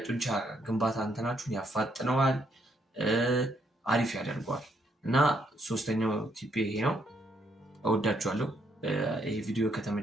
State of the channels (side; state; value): both; normal; correlation 0.73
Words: ግንባታ እንትናችሁን ያፋጥነዋል፣ አሪፍ ያደርገዋል። እና ሶስተኛው ቲፕ ይሄ ነው። እወዳችኋለሁ። ይሄ ቪዲዮ